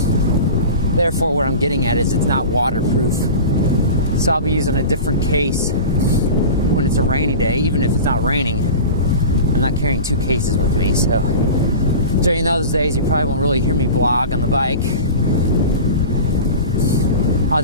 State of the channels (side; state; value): both; inverted; correlation -0.33